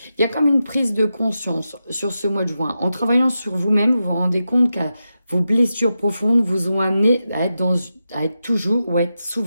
il y a comme une prise de conscience sur ce mois de juin. En travaillant sur vous-même, vous vous rendez compte que vos blessures profondes vous ont amené à être toujours ou à être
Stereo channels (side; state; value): both; inverted; correlation -0.89